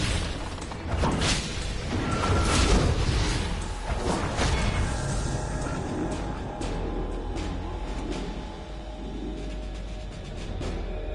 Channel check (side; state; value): both; identical; correlation 1.00